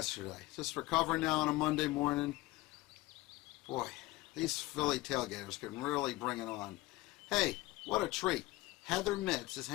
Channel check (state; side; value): quieter; right; 19.5 dB